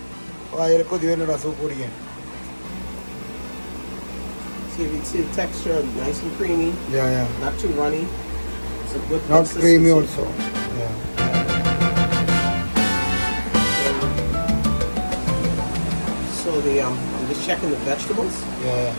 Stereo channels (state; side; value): inverted; both; correlation -1.00